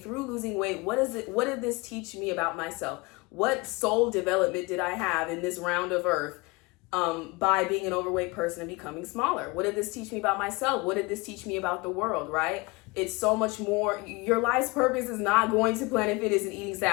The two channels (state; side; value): quieter; right; 25.3 dB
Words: losing weight, what did this teach me about myself? What soul development did I have in this round of earth by being an overweight person and becoming smaller? What did this teach me about myself? What did this teach me about the world, right? It's so much more. Your life's purpose is not going to Planet Fitness and eating